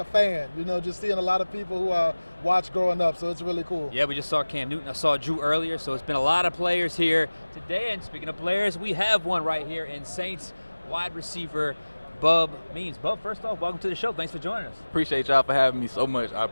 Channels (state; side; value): inverted; both; correlation -1.00